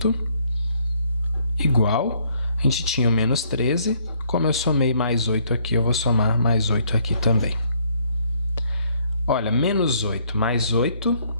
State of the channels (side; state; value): both; inverted; correlation -0.66